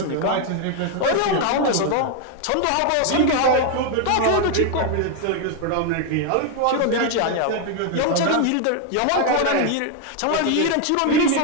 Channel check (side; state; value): both; different; correlation 0.01